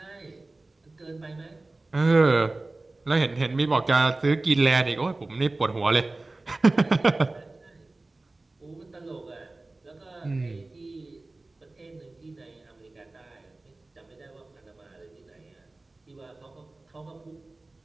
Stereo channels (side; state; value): left; quieter; 3.1 dB